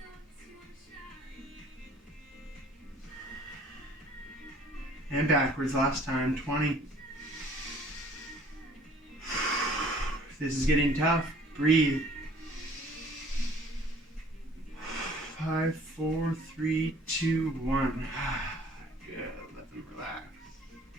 And backwards last time. 20. If this is getting tough, breathe. 5, 4, 3, 2, 1. Good. Let them relax.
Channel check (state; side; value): normal; both; correlation 0.55